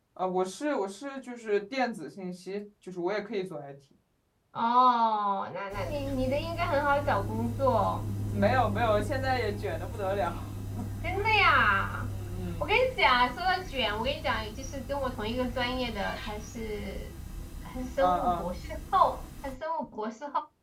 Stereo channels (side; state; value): both; identical; correlation 1.00